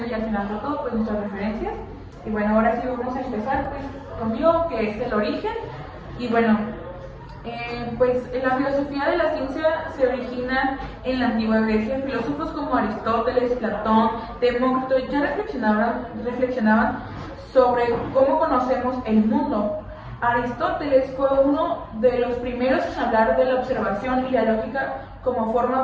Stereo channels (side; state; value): both; identical; correlation 1.00